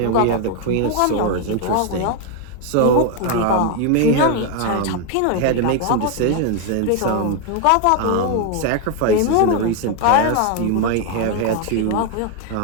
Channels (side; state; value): both; different; correlation 0.01